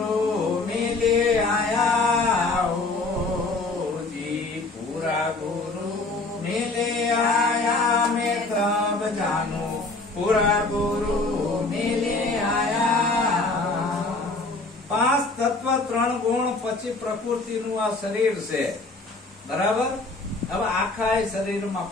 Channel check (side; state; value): right; quieter; 3.3 dB